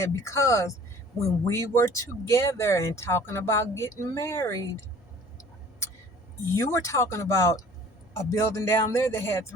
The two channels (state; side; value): normal; both; correlation 0.50